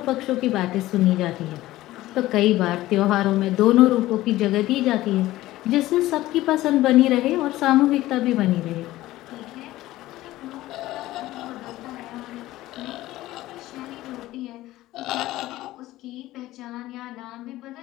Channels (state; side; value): quieter; right; 16.3 dB